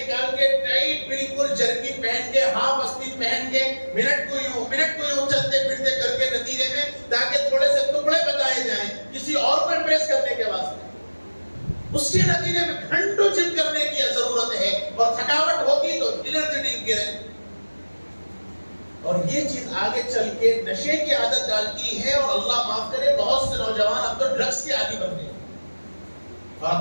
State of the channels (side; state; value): both; inverted; correlation -1.00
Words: کے ٹائٹ بالکل جرکی پہن کے، ہاف آستین پہن کے، منٹ کو یوں چلتے پھرتے کر کے نتیجے میں تاکہ تھوڑے سے ٹکڑے بتائے جائیں کسی اور کو امپریس کرنے کے واسطے. اس کے نتیجے میں گھنٹوں جم کرنے کی ضرورت ہے اور تھکاوٹ ہوگی تو انرجی ڈرنک کریں. اور یہ چیز آگے چل کے نشے کی عادت ڈالتی ہے، اور اللہ معاف کرے بہت سے نوجوان اب تو ڈرگس کے عادی بن گئے. اور